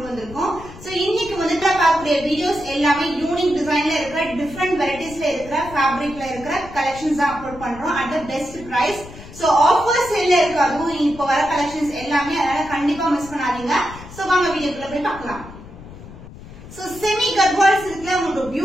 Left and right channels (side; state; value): left; noise; rumble, 16 dB below the sound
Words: வந்திருக்கோம். சோ இன்னைக்கு வந்து பார்க்கக்கூடிய வீடியோஸ் எல்லாமே யூனிக் டிசைன்ல இருக்கிற, டிஃபரெண்ட் வெரைட்டிஸ்ல இருக்கிற, ஃபேப்ரிக்ல இருக்கிற கலெக்ஷன்ஸ் தான் அப்லோட் பண்றோம் at the best price. So offer சேல்ல இருக்கு, அதுவும் இப்போ வர கலெக்ஷன்ஸ் எல்லாமே, அதனால கண்டிப்பா மிஸ் பண்ணாதீங்க. சோ வாங்க வீடியோக்குள்ள போய் பார்க்கலாம். சோ செமி கர்வால் சில்க்ல உங்களுக்கு